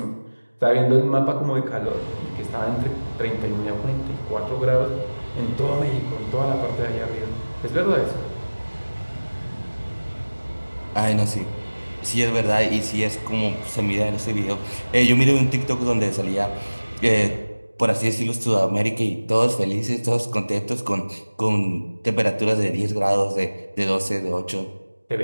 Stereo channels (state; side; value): inverted; both; correlation -1.00